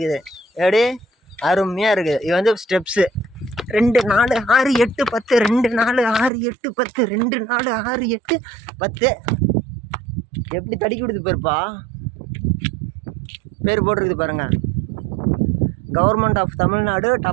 எப்படி அருமையாக இருக்குது. இது வந்து ஸ்டெப்ஸு 2 4 6 8 10 2 4 6 8 10 2 4 6 8 10. எப்படி தடுக்கி விடுது பேருப்பா, பேர் போட்டிருக்குது பாருங்கள். Government of Tamil Nadu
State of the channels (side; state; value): left; drops out; at 6.3 s